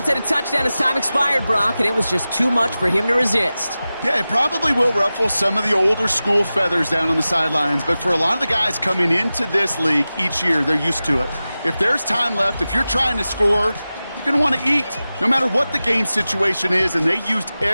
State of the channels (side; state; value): both; inverted; correlation -0.95